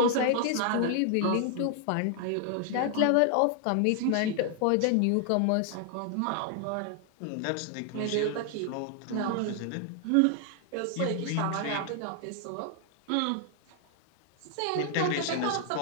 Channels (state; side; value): different; both; correlation 0.00